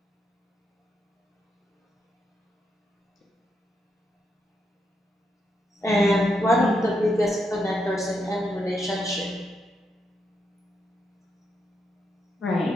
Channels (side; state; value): both; normal; correlation 0.81